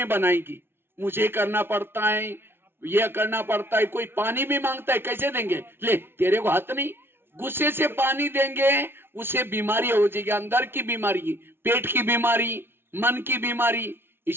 बनाएगी। मुझे करना पड़ता है, ये करना पड़ता है। कोई पानी भी मांगता है, कैसे देंगे? ले, तेरे को हाथ नहीं। गुस्से से पानी देंगे, उसे बीमारी हो जाएगी, अंदर की बीमारी, पेट की बीमारी, मन की बीमारी।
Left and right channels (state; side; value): late; left; 0.11 ms